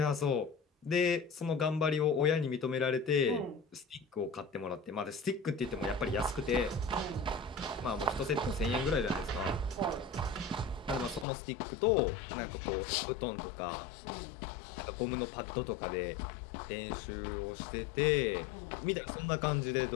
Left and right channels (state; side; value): drops out; right; at 11.2 s